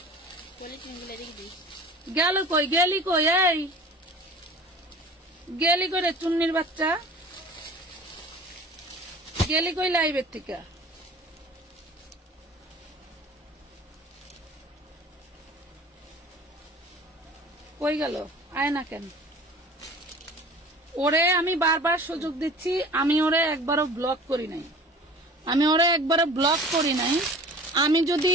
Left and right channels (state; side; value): normal; both; correlation 0.43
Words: গেল কই? গেলি কই? এই গেলি করে চুন্নির বাচ্চা। গেলি কই লাইভের থেকে? কই গেল? আয় না কেন? ওরে আমি বারবার সুযোগ দিচ্ছি, আমি ওরে একবারও ব্লক করি নাই, আমি